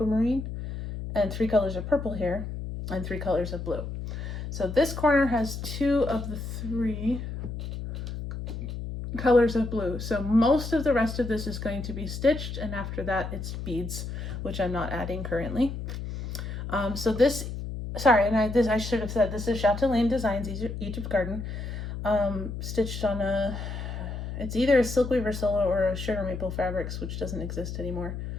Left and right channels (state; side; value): noise; left; hum, 6 dB below the sound